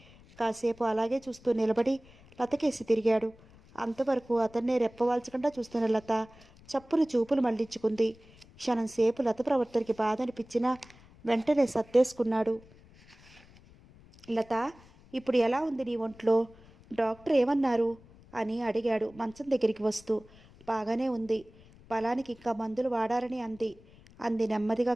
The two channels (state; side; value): noise; left; rumble, 25 dB below the sound